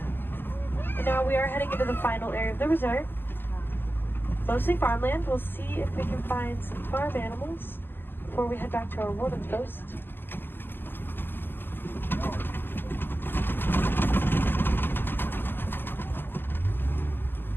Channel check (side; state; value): right; late; 0.096 ms